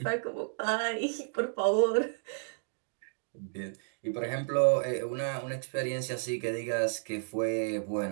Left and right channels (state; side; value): silent; left; digital silence